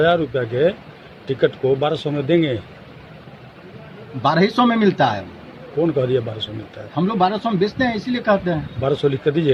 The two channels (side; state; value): both; identical; correlation 1.00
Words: रुपया के टिकट को 1200 में देंगे। 1200 में मिलता है। कौन कह दिया 1200 मिलता है? हम लोग 1200 में बेचते हैं, इसीलिए कहते हैं। 1200 लिख कर